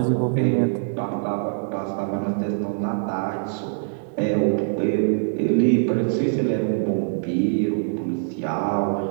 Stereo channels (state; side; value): silent; left; digital silence